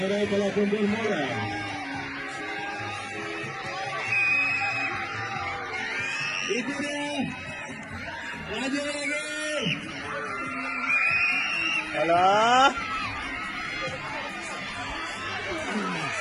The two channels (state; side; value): identical; both; correlation 1.00